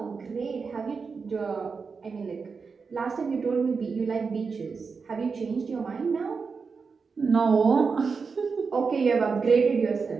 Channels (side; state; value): left; quieter; 5.1 dB